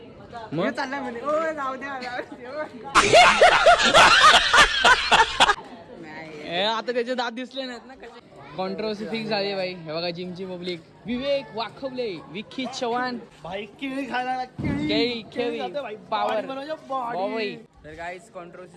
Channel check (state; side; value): identical; both; correlation 1.00